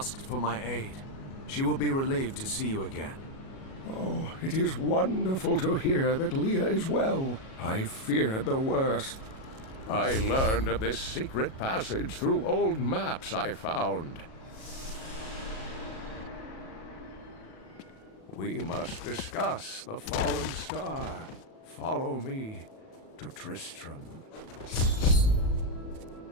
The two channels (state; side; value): late; right; 37 ms